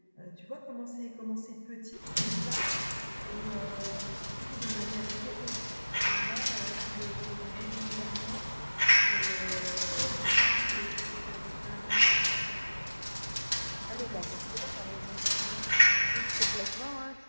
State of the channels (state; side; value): inverted; both; correlation -1.00